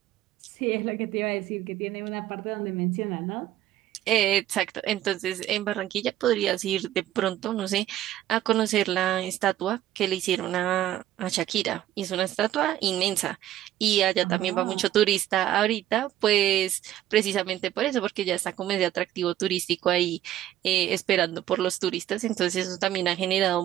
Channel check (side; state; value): left; quieter; 12.9 dB